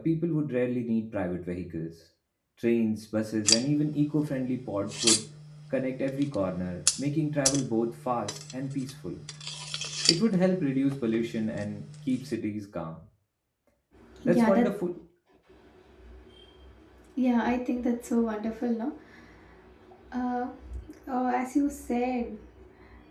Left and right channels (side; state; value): both; identical; correlation 1.00